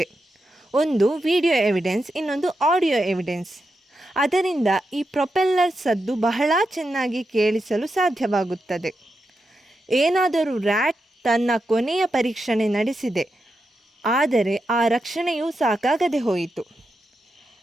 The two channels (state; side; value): normal; both; correlation 0.87